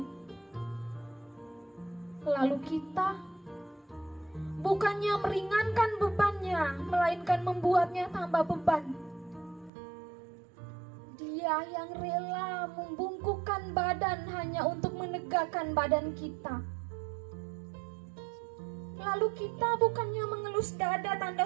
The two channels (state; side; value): drops out; left; at 9.7 s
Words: Lalu kita bukannya meringankan bebannya, melainkan membuatnya tambah beban. Dia yang rela membungkukkan badan hanya untuk menegakkan badan kita. Lalu kita bukannya mengelus dada tanda